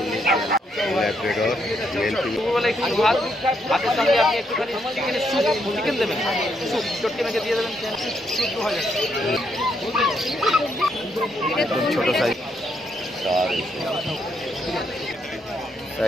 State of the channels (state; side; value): normal; both; correlation 0.76